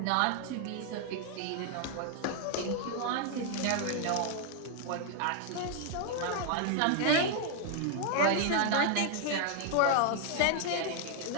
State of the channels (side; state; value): both; different; correlation 0.00